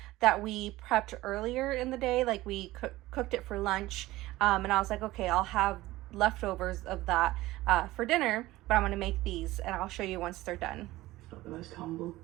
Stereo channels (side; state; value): left; quieter; 17.6 dB